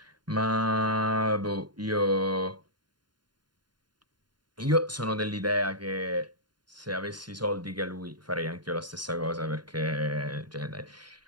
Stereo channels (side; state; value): left; late; 0.71 ms